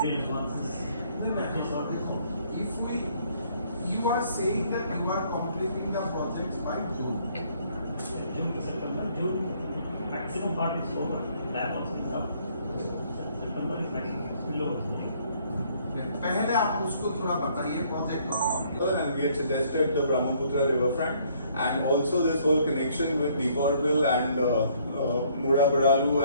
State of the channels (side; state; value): both; inverted; correlation -0.64